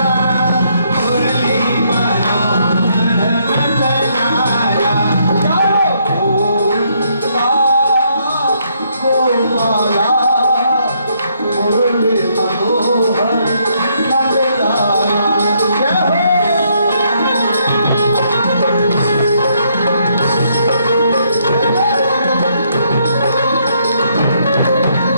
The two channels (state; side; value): inverted; both; correlation -0.72